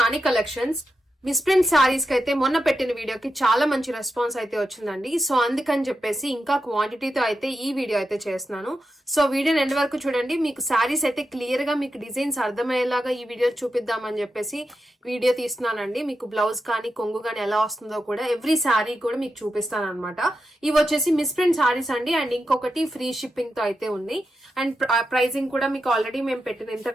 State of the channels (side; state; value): both; normal; correlation 0.88